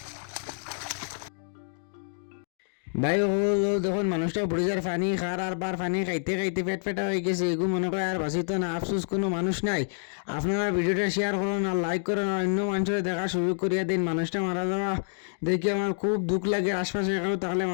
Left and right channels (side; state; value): right; silent; digital silence